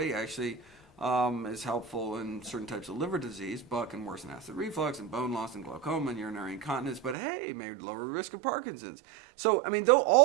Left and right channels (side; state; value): left; drops out; at 7.2 s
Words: actually is helpful in certain types of liver disease, but can worsen acid reflux and bone loss and glaucoma and urinary incontinence. But hey, may lower risk of Parkinson's. So I mean, though